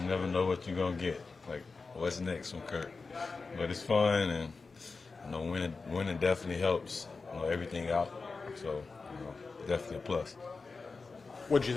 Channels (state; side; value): quieter; right; 4.2 dB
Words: never know what you're gonna get. Like what's next from Kirk. But it's fun and. Winning definitely helps, everything out. So, definitely a plus. What did you